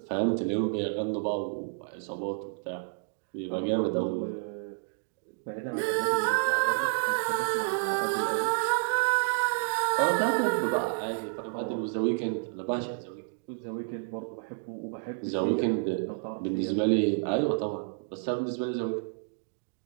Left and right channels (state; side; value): silent; left; digital silence